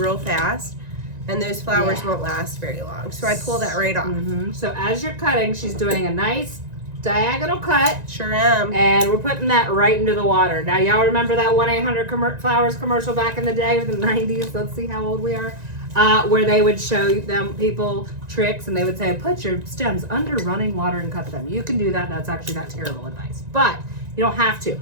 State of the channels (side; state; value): left; late; 1.9 ms